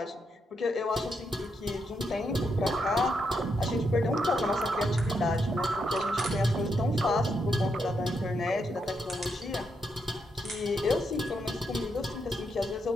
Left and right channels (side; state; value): both; normal; correlation 0.80